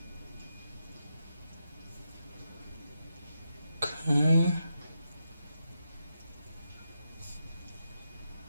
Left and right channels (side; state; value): both; inverted; correlation -0.86